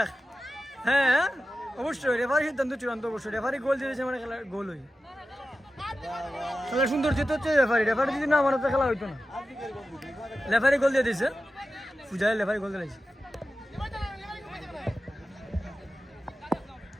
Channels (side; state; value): both; normal; correlation 0.93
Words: এক হ্যাঁ অবশ্যই রেফারি সিদ্ধান্ত চূড়ান্ত অবশ্যই রেফারি গোল দিয়েছে মানে খেলার গোল হই খেলা সুন্দর যেতে হচ্ছে রেফারি যদি না মানে তো খেলা হইতো না রেফারি গোল দিয়ে দিয়েছে পূজায় রেফারি গোল দিয়েছে